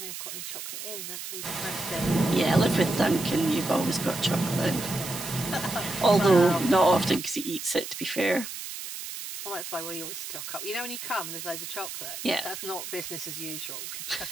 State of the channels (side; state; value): right; noise; hiss, 8 dB below the sound